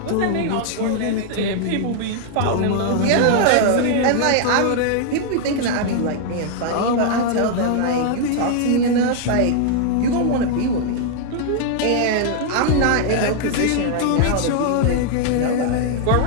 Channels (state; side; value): different; both; correlation -0.01